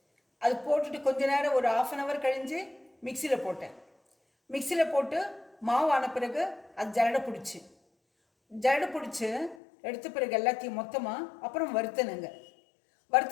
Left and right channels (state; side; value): drops out; right; at 9.6 s